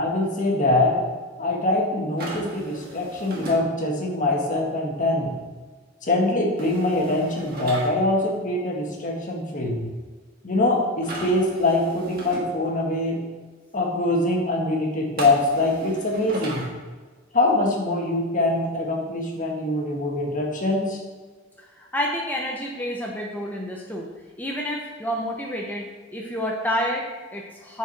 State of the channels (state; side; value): normal; both; correlation 0.16